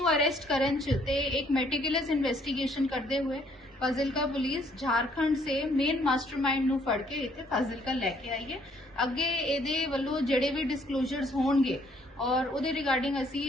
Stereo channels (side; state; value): both; normal; correlation 0.65